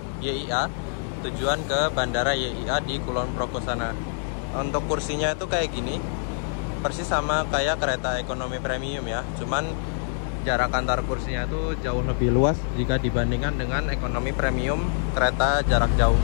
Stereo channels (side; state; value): right; silent; digital silence